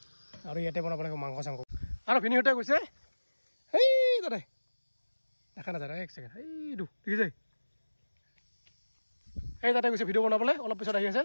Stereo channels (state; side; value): inverted; both; correlation -1.00